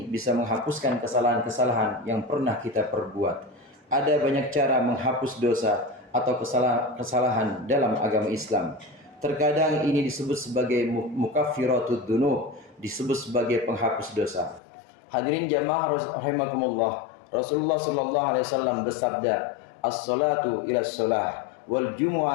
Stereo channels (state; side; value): drops out; right; at 14.6 s